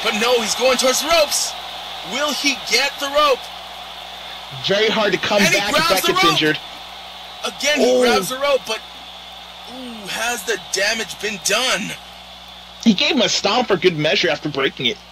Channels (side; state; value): both; identical; correlation 1.00